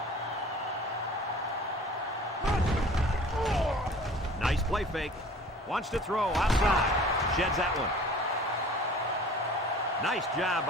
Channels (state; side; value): normal; both; correlation 0.46